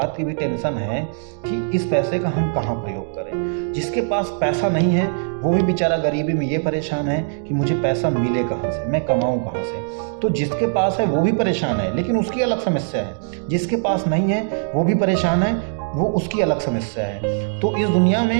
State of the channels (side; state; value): left; silent; digital silence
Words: की भी टेंशन है कि इस पैसे का हम कहाँ प्रयोग करें। जिसके पास पैसा नहीं है वो भी बेचारा गरीबी में ये परेशान है कि मुझे पैसा मिले कहाँ से, मैं कमाऊँ कहाँ से। तो जिसके पास है वो भी परेशान है, लेकिन उसकी अलग समस्या है। जिसके पास नहीं है वो भी परेशान है, वो उसकी अलग समस्या है। तो इस दुनिया